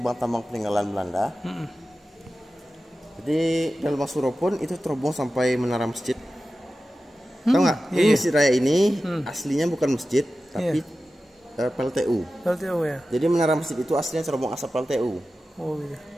tambang peninggalan Belanda. Jadi dan lubang Suro pun itu terhubung sampai menara masjid. Tahu nggak? Iya. Ini Masjid Raya ini aslinya bukan masjid, tapi PLTU. PLTU ya. Jadi menara masjid itu aslinya terhubung asap PLTU. Oh iya.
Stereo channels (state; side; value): normal; both; correlation 0.94